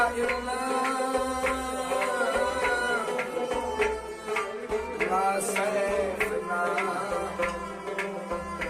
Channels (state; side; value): identical; both; correlation 1.00